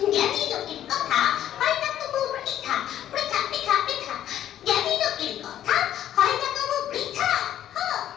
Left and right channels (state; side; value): quieter; right; 11.5 dB